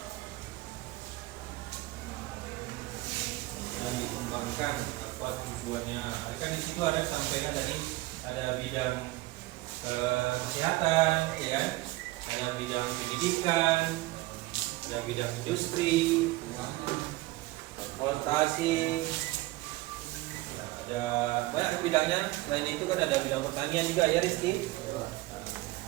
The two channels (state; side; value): quieter; left; 19.3 dB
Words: Dan dikembangkan apa tujuannya. Kan di situ ada sampaikan tadi ada bidang kesehatan, ya kan? Ada bidang pendidikan, ada bidang industri, transportasi, ada banyak bidangnya. Selain itu kan ada bidang pertanian juga ya Rizky.